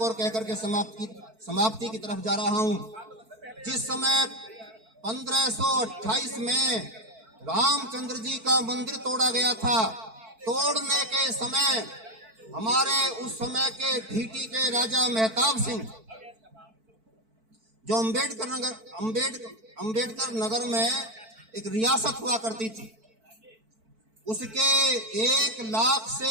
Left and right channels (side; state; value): left; late; 4.5 ms